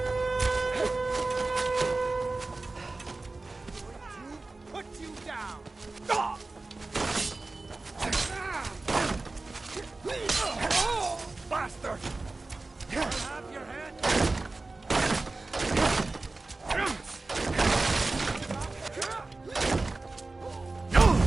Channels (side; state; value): left; quieter; 3.4 dB